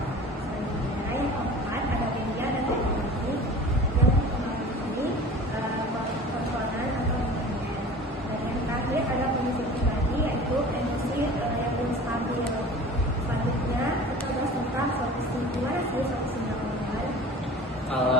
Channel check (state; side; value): normal; both; correlation 0.40